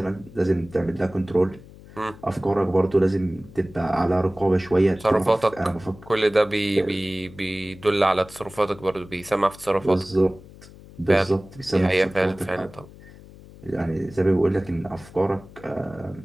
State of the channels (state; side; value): noise; left; hum, 20 dB below the sound